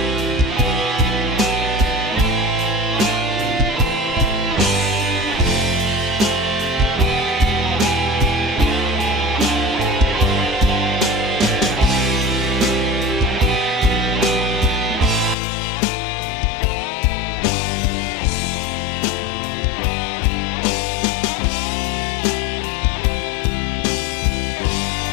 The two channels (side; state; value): right; drops out; at 15.4 s